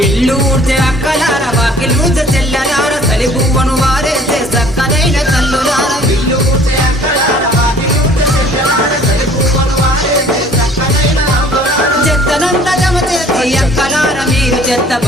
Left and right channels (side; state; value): both; normal; correlation 0.53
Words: ఇల్లు ఊడ్చే అక్కలార వాకిలు ఊడ్చే చెల్లెలార తలి పువ్వను వారేసే చక్కనైన తల్లులార ఇల్లు ఊడ్చే అక్కలార వాకిలు ఊడ్చే చెల్లెలార తలి పువ్వను వారేసే చక్కనైన చెత్తనంత జమ చేసి అక్కలార మీరు చెత్త